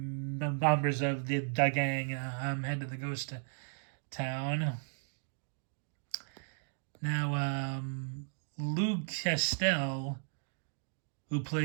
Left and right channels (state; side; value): silent; left; digital silence